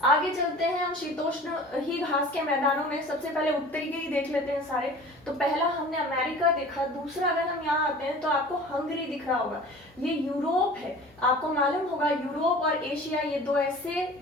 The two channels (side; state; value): both; normal; correlation 0.42